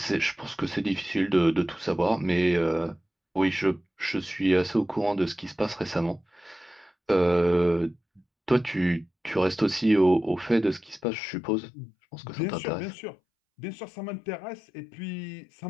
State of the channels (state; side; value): drops out; right; at 11.1 s